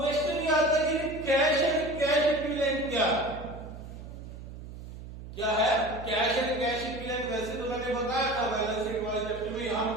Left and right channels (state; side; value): noise; right; hum, 12 dB below the sound